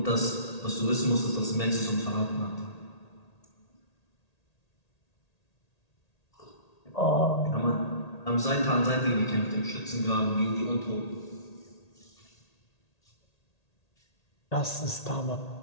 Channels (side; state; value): right; late; 1.8 ms